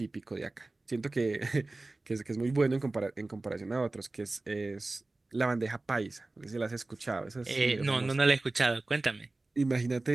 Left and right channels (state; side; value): quieter; left; 3.1 dB